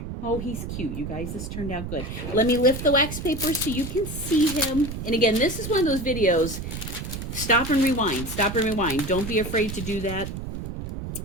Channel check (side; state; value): right; noise; rumble, 7 dB below the sound